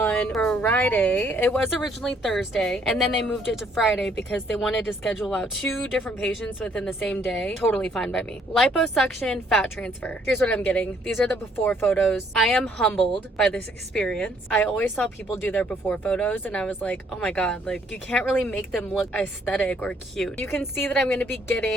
Friday. It was originally Thursday, and then they moved it to Friday because they wanted to schedule out 2 different patients within the same day. Totally fine by me. Liposuction fat transfer. Here's what I'm getting. These are the before photos. I am humbled by this experience. I always saw people do their before photos, and I was like, oh my god, like, you can't really make them look aesthetic or cute. You can see that I'm going to be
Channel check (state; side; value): normal; both; correlation 0.66